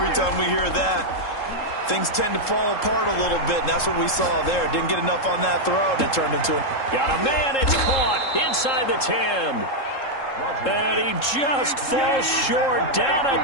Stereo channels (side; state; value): right; late; 3.7 ms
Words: time we hear that, things tend to fall apart a little bit, and that's what we saw there. Didn't get enough on that throw, and it turned into a... Got a man, it's caught inside the 10. And he just falls short down